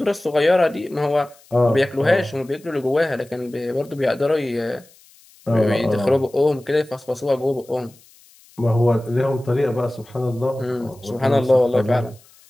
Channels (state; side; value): noise; left; hiss, 28 dB below the sound